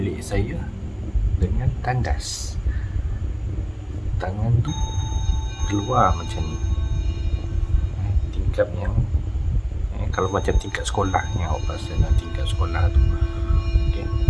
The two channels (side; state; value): both; identical; correlation 1.00